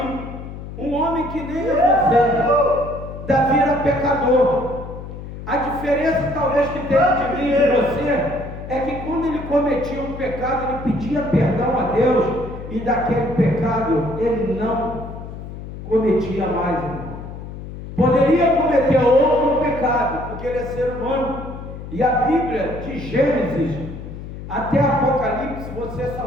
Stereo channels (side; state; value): left; noise; hum, 11 dB below the sound